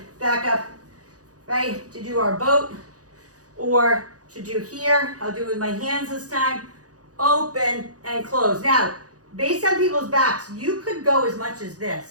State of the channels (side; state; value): left; late; 0.67 ms